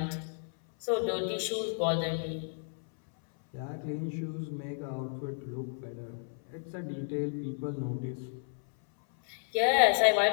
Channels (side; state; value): right; silent; 56 dB below the other